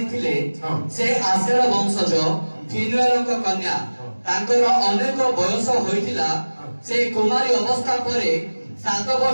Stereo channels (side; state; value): both; inverted; correlation -1.00